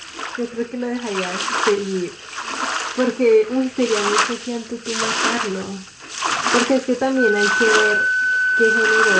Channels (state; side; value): identical; both; correlation 1.00